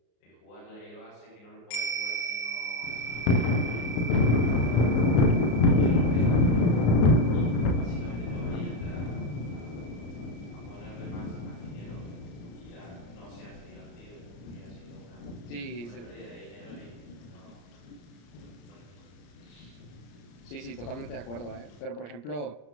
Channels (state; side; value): late; right; 34 ms